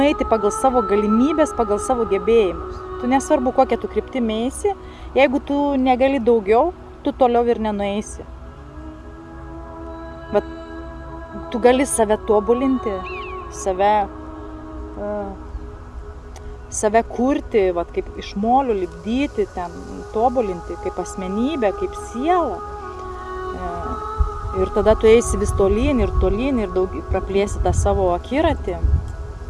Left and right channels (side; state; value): both; identical; correlation 1.00